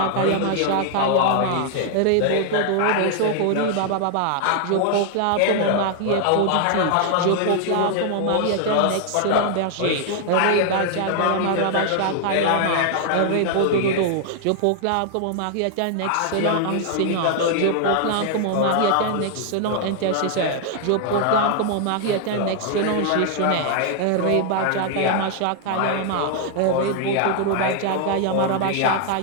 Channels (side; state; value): both; different; correlation 0.00